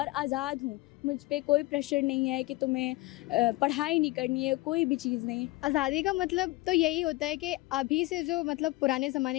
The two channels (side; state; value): right; quieter; 20.5 dB